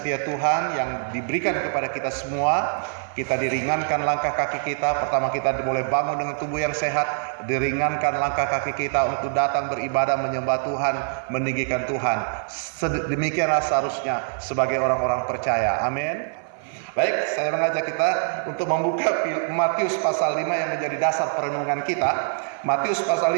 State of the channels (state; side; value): silent; left; 55 dB below the other